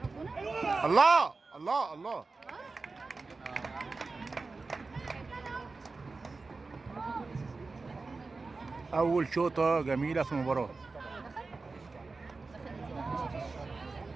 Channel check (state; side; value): quieter; left; 3.9 dB